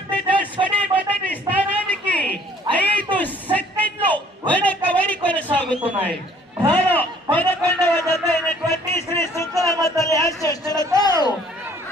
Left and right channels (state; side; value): normal; both; correlation 0.58